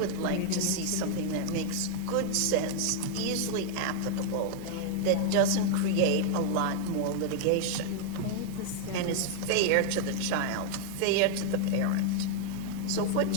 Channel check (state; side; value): different; both; correlation 0.00